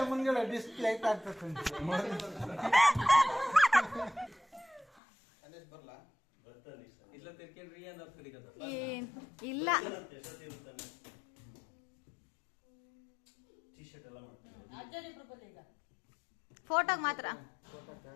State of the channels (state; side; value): drops out; right; at 5.0 s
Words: ಮುಂದ್ಗಡೆ ಡಿಸ್ಪ್ಲೇ ಆಗ್ತದೆ. ಏನ್ ಇಲ್ಲ. ಟೀ ಶರ್ಟ್ ಎಲ್ಲ ಮಾಡ್ತಾರೆ. ಫೋಟೋಗ್ ಮಾತ್ರ.